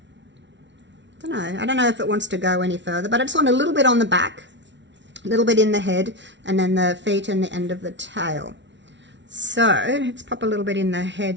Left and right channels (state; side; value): late; left; 0.52 ms